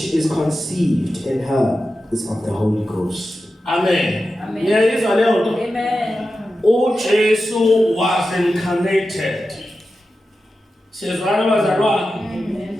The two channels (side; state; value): both; normal; correlation 0.92